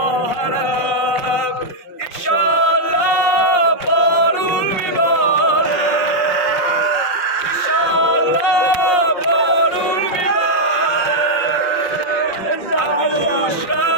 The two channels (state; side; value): late; right; 5.6 ms